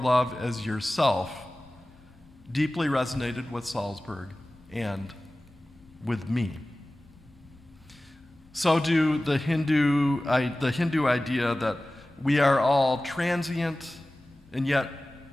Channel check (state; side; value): noise; left; hum, 29 dB below the sound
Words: as yourself, deeply resonated with Salzberg and with me. So do the Hindu idea that we are all transient and yet,